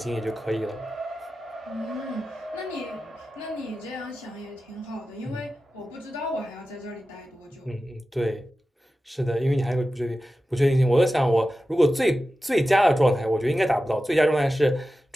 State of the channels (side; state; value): both; normal; correlation 0.93